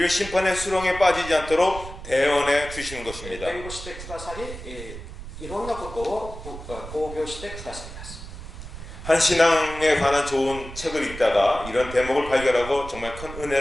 심판의 수렁에 빠지지 않도록 대언해 주시는 것입니다. 弁護してくださりいろんなことを防御してくださいます。한 신앙에 관한 좋은 책을 읽다가 이런 대목을 발견하고 정말 큰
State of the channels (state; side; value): noise; right; rumble, 12 dB below the sound